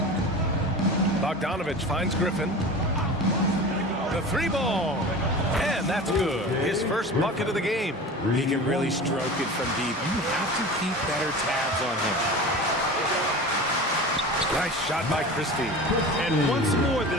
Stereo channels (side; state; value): both; normal; correlation 0.34